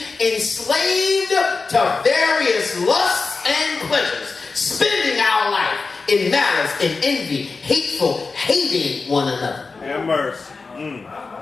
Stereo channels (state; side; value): quieter; right; 4.3 dB